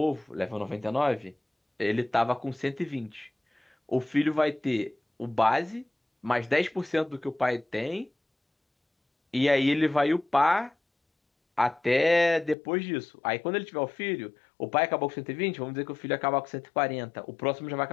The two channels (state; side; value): drops out; right; at 12.6 s